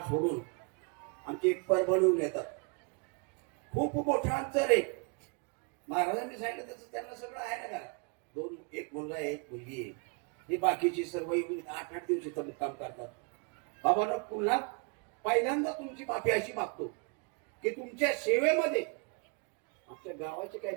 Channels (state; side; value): quieter; left; 35.2 dB